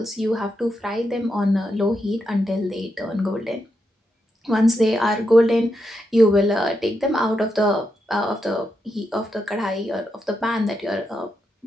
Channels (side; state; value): both; normal; correlation 0.84